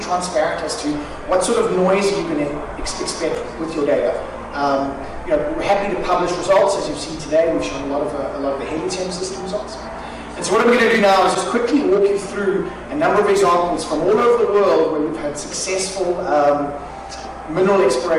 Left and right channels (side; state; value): both; identical; correlation 1.00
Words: transparent as to what sort of noise you can expect with your data. We're happy to publish results. As you've seen today, we've shown a lot of the Helium system results. And so what I'm going to do now is just quickly walk you through a number of examples from all over the world where we've had successful mineral